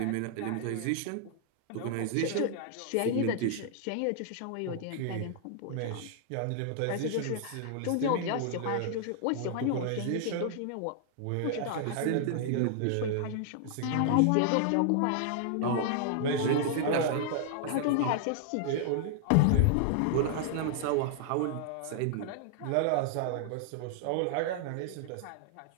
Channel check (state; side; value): different; both; correlation -0.01